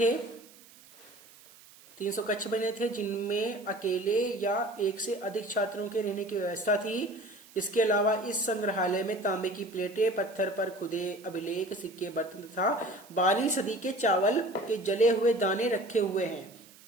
300 कक्ष बने थे जिनमें अकेले या एक से अधिक छात्रों के रहने की व्यवस्था थी। इसके अलावा इस संग्रहालय में तांबे की प्लेटें, पत्थर पर खुदे अभिलेख, सिक्के, बर्तन तथा 12वीं सदी के चावल के जले हुए दाने रखे हुए हैं।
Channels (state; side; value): noise; right; hiss, 23 dB below the sound